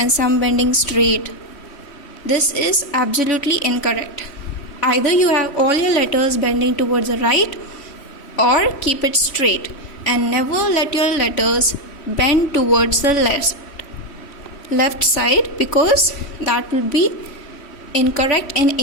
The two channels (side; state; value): right; late; 3.1 ms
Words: some bending straight. This is absolutely incorrect. Either you have all your letters bending towards the right or keep it straight, and never let your letters bend towards the left side, because that will be incorrect in